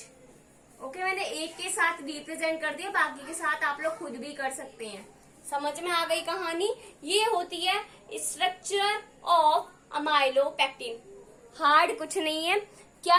ओके, मैंने एक के साथ रिप्रेजेंट कर दिया, बाकी के साथ आप लोग खुद भी कर सकते हैं। समझ में आ गई कहानी। ये होती है स्ट्रक्चर ऑफ अमाइलोपेक्टिन। हार्ड कुछ नहीं है।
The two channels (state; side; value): identical; both; correlation 1.00